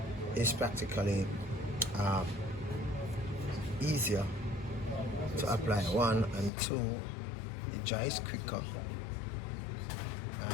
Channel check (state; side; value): drops out; right; at 6.5 s